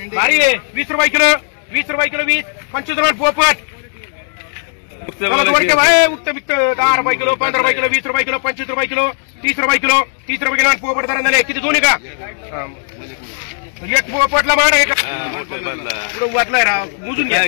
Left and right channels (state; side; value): silent; right; digital silence